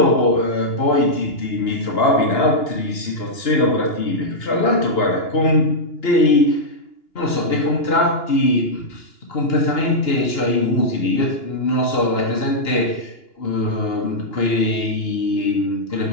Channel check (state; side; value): late; right; 2.9 ms